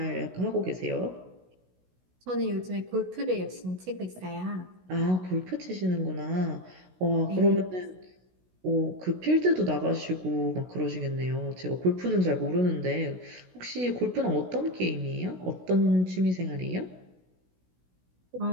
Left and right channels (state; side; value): late; left; 16 ms